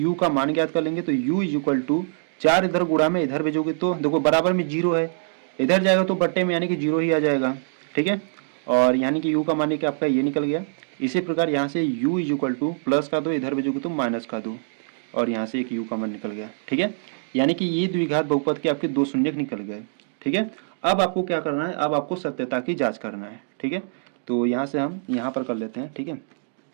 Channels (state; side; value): silent; left; digital silence